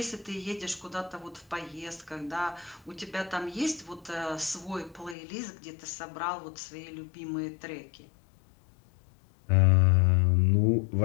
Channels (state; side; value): drops out; right; at 5.2 s